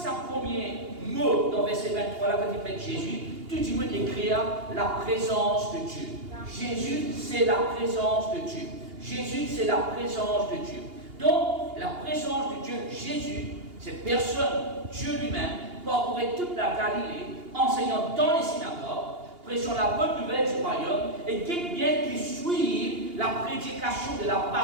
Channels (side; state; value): left; late; 2.8 ms